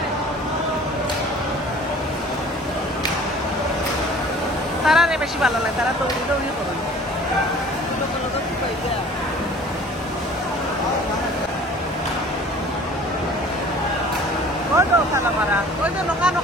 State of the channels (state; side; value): normal; both; correlation 0.48